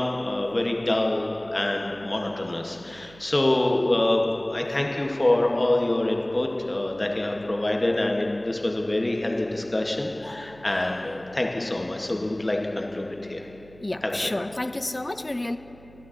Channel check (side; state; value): right; noise; hum, 23 dB below the sound